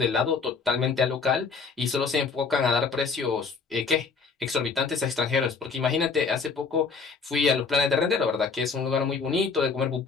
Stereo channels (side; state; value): right; quieter; 4.9 dB